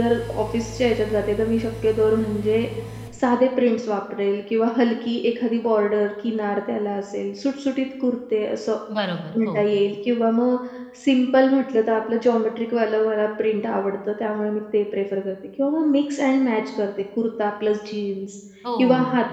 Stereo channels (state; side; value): identical; both; correlation 1.00